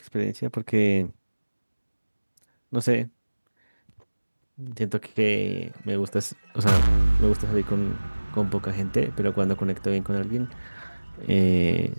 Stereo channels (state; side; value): inverted; both; correlation -1.00